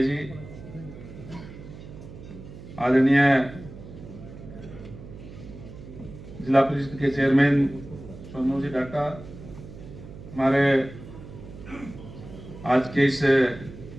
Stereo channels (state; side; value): noise; right; hum, 15 dB below the sound